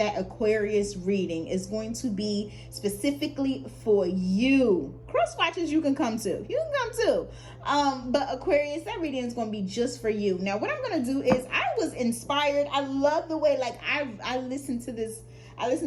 Aquarius reading. It's going to be specifically for you. Cross watchers you can come to. You can come too. But Aquarius, that reading is going to be just for you. Now, what I'm going to do is I was inspired. I love the way, like, I listened to this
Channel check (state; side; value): identical; both; correlation 1.00